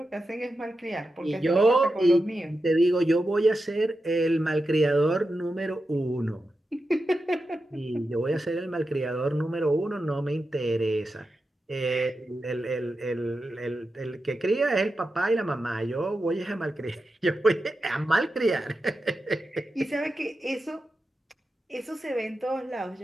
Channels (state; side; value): normal; both; correlation 0.90